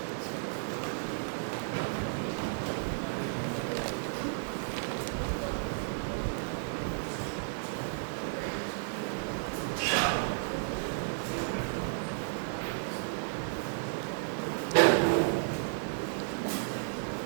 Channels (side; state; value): left; silent; digital silence